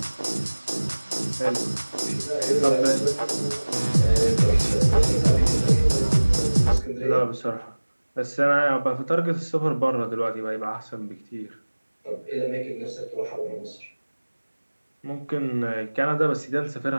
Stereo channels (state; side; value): inverted; both; correlation -1.00